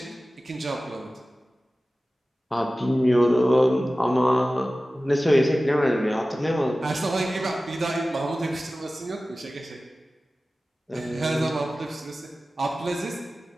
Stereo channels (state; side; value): normal; both; correlation 0.96